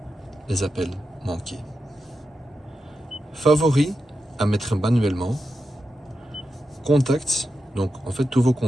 les appels manqués. Favoris à mettre manuellement. Contacts, donc en fait tous vos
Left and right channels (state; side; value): normal; both; correlation 0.89